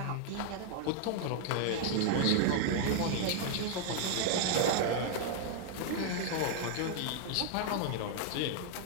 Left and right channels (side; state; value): both; different; correlation 0.00